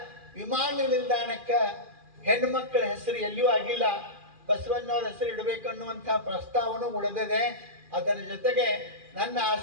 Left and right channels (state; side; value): late; left; 2.4 ms